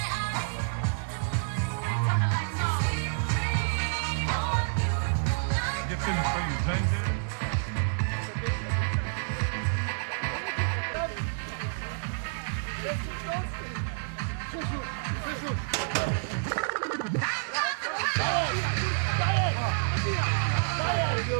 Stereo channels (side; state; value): left; silent; digital silence